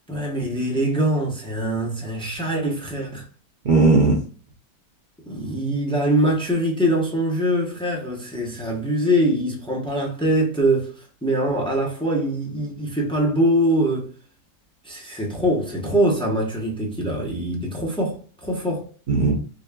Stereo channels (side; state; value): both; normal; correlation 0.19